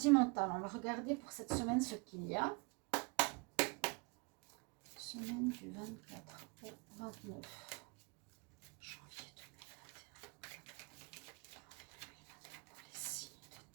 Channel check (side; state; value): left; quieter; 30.1 dB